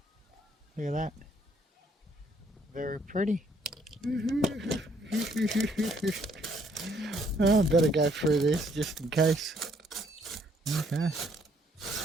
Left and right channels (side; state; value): both; normal; correlation 0.67